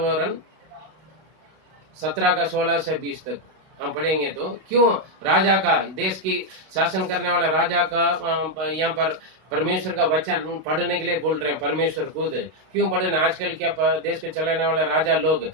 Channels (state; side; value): late; left; 32 ms